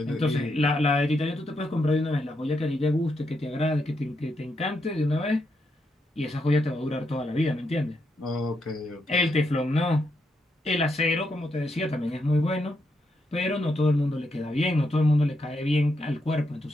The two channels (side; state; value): both; normal; correlation 0.81